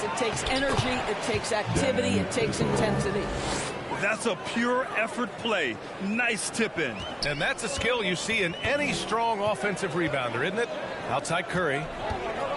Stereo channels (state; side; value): identical; both; correlation 1.00